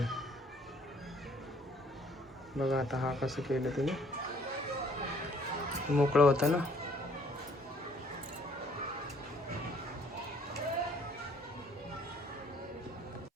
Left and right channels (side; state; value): both; normal; correlation 0.61